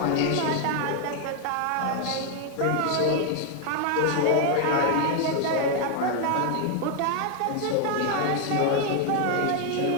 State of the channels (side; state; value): both; different; correlation 0.00